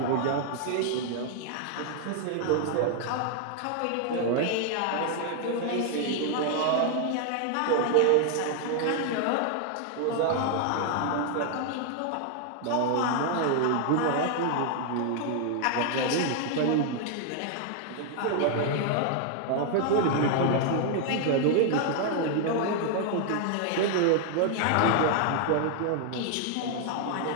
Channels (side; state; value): both; different; correlation 0.00